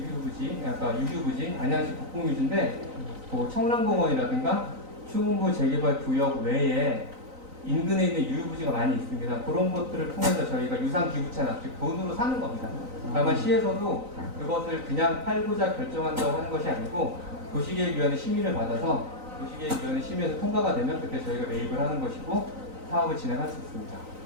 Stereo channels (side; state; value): left; late; 3.9 ms